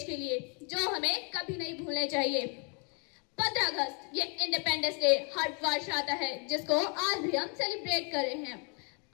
के लिए, जो हमें कभी नहीं भूलने चाहिए। 15 अगस्त ये इंडिपेंडेंस डे हर वर्ष आता है, जिसको आज भी हम सेलिब्रेट कर रहे हैं।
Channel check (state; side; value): quieter; right; 35.9 dB